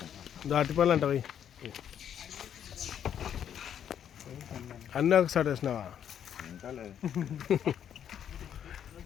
దాటిపల్లి అంటవి అన్నీ ఒకసారి వేసినావా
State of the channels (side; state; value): right; quieter; 9.2 dB